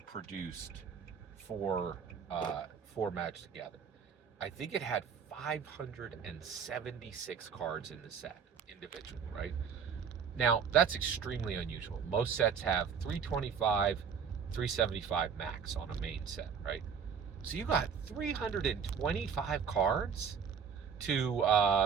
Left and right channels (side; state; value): left; quieter; 6.8 dB